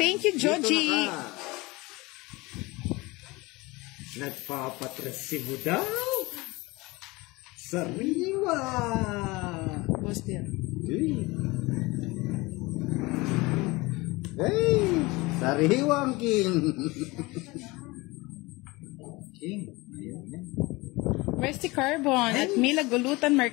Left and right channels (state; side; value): quieter; right; 23.0 dB